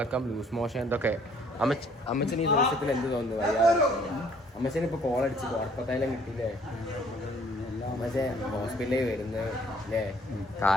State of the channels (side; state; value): both; normal; correlation 0.60